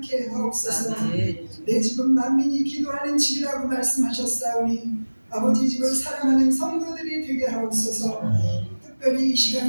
하옵소서. 내 집은 만민이 기도하는 집이라고 말씀하셨사오니 아버지 집을 사랑하는 성도들이 되게 하옵소서. 특별히 이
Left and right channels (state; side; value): inverted; both; correlation -1.00